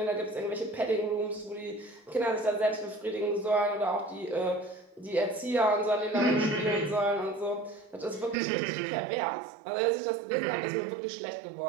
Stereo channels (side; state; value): left; drops out; at 8.3 s